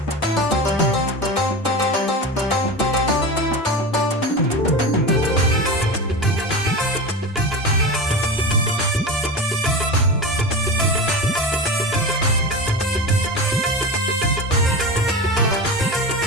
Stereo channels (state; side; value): normal; both; correlation 0.26